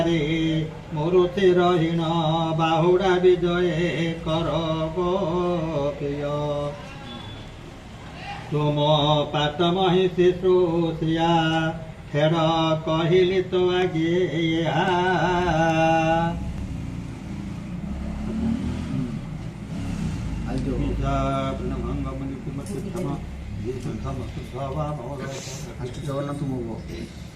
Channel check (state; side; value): identical; both; correlation 1.00